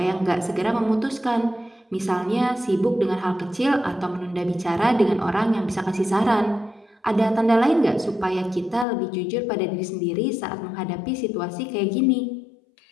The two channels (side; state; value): right; drops out; at 8.8 s